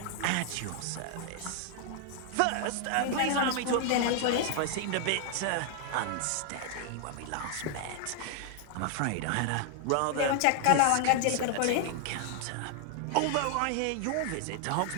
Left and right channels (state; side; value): different; both; correlation 0.00